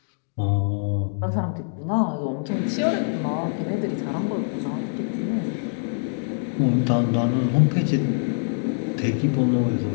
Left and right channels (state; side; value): silent; right; digital silence